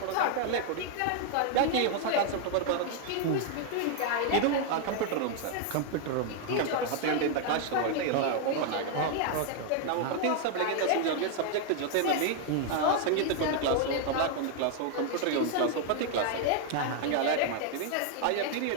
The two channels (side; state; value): both; different; correlation 0.00